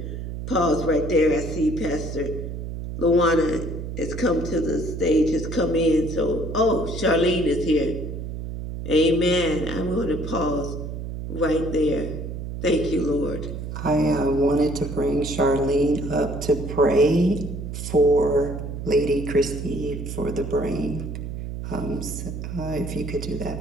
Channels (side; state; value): right; noise; hum, 7 dB below the sound